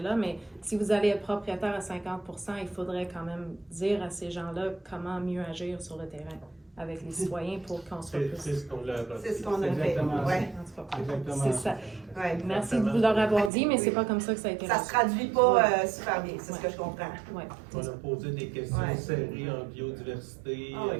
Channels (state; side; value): drops out; left; at 13.5 s